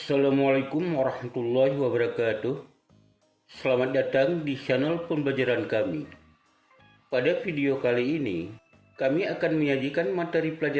warahmatullahi wabarakatuh. Selamat datang di channel pembelajaran kami. Pada video kali ini, kami akan menyajikan materi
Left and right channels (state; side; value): identical; both; correlation 1.00